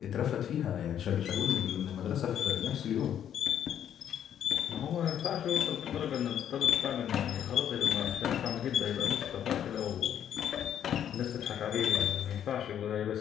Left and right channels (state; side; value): quieter; right; 9.8 dB